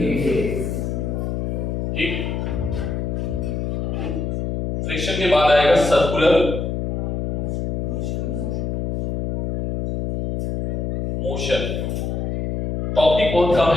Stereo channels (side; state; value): left; noise; hum, 2 dB below the sound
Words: डेज। ठीक। फ्रिक्शन के बाद आएगा सर्कुलर मोशन। टॉपिक बहुत कम